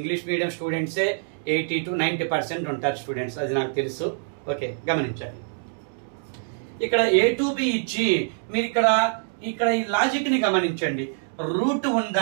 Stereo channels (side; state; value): left; silent; digital silence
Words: మీడియం స్టూడెంట్సే 80 to 90% ఉంటారు స్టూడెంట్స్, అది నాకు తెలుసు. ఓకే, గమనించాలి. ఇక్కడ A to B ఇచ్చి మీరు ఇక్కడ ఈ లాజిక్ ని గమనించండి. రూట్